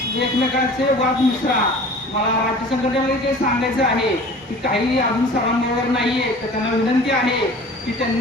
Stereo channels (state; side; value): normal; both; correlation 0.43